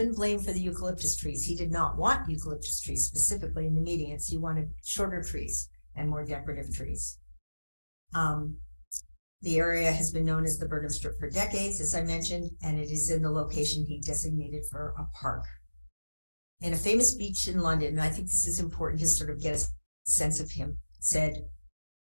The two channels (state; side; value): inverted; both; correlation -1.00